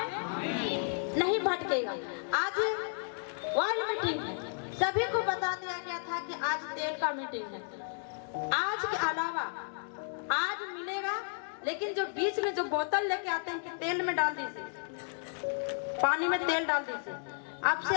नहीं भटकेगा। आज वर्ल्ड मीटिंग है, सभी को बता दिया गया था कि आज तेल का मीटिंग है। आज के अलावा आज मिलेगा, लेकिन जो बीच में जो बोतल लेके आते हैं कि तेल में डाल दीजिए, पानी में तेल डाल दीजिए, आपसे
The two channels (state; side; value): silent; right; digital silence